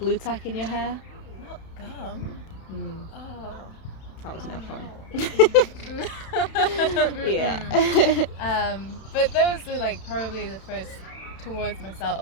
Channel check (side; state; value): right; late; 31 ms